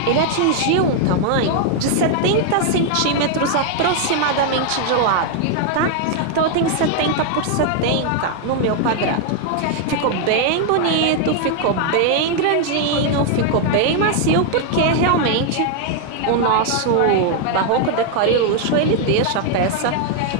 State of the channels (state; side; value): different; both; correlation 0.00